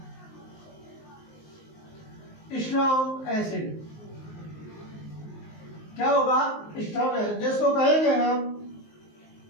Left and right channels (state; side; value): late; right; 19 ms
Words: स्ट्रॉन्ग एसिड। क्या होगा? स्ट्रॉन्ग एसिड, जिसको कहेंगे हम